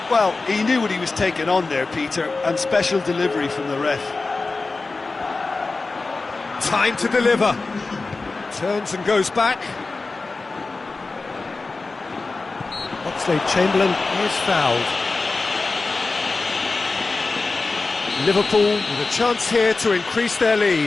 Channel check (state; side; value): quieter; right; 3.7 dB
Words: Well, he knew what he was taking on there, Peter, and special delivery from the ref. Time to deliver. Turns and goes back. Oxlade-Chamberlain is fouled. Liverpool with a chance here to increase their